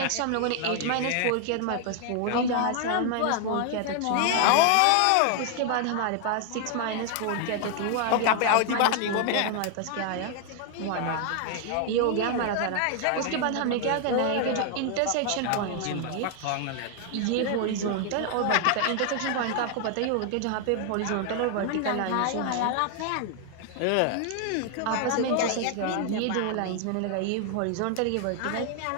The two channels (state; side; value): different; both; correlation 0.00